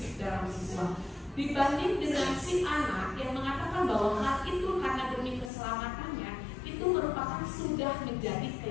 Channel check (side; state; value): right; drops out; at 5.5 s